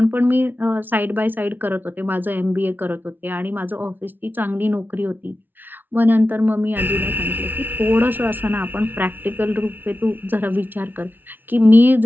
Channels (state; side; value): late; left; 0.091 ms